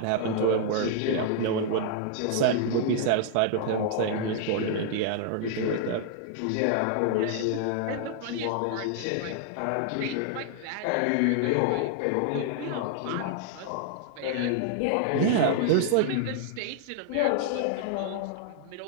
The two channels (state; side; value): different; both; correlation 0.00